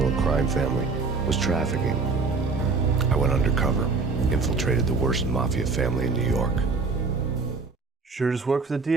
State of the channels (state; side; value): quieter; left; 4.4 dB